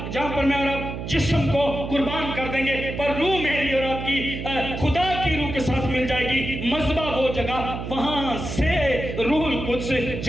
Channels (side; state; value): right; noise; hum, 6 dB below the sound